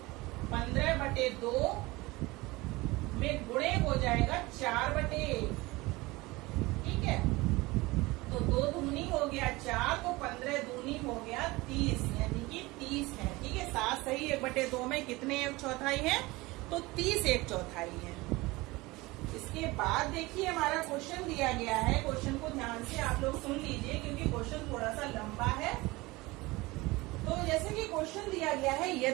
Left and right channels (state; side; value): quieter; left; 21.6 dB